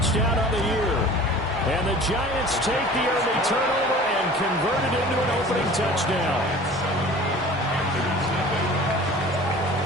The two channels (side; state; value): both; normal; correlation 0.43